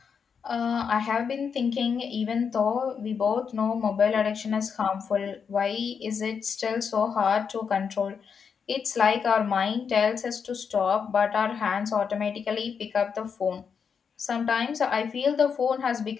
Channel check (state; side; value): quieter; right; 6.4 dB